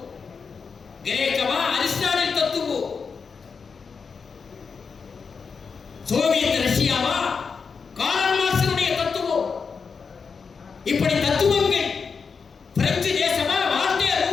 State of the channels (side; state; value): right; quieter; 5.4 dB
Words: கிரேக்கமா அரிஸ்டாட்டில் தத்துவம், சோவியத் ரஷ்யாவா கார்ல் மார்க்ஸுடைய தத்துவம். இப்படி தத்துவங்கள், பிரெஞ்சு தேசமா வால்டேர்